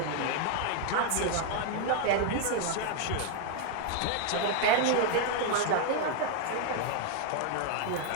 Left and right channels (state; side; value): different; both; correlation 0.00